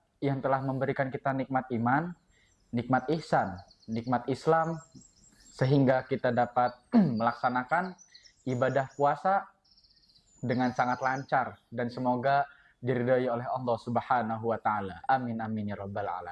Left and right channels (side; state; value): both; identical; correlation 1.00